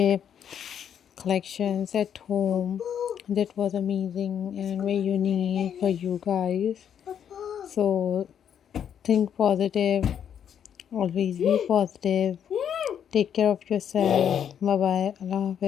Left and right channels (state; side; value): quieter; right; 8.8 dB